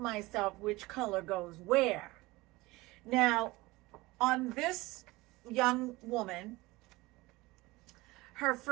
which color goes where. Now, on this young woman, her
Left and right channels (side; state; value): left; quieter; 21.0 dB